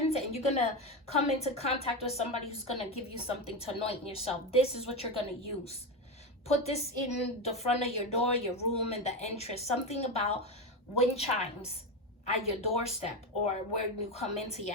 and you're going to come into contact with somebody who's going to give you something to anoint yourself. This is what you're going to use. Put this in the front of your door, your room, in the entrance. Something about wind chimes. at your doorstep or where you come into your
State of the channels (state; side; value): normal; both; correlation 0.15